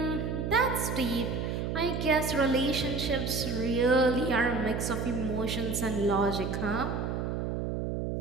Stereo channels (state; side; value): noise; right; hum, 2 dB below the sound